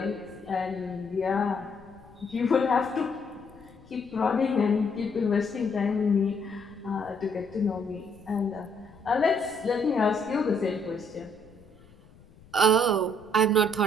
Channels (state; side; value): noise; left; rumble, 25 dB below the sound